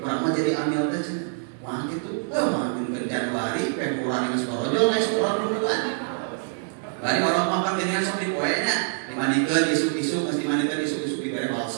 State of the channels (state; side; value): silent; left; digital silence